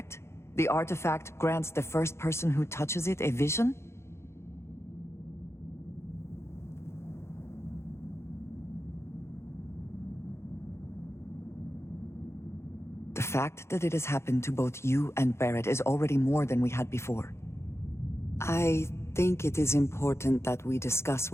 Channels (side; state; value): right; late; 0.13 ms